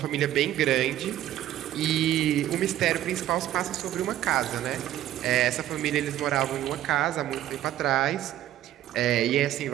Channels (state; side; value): quieter; left; 12.8 dB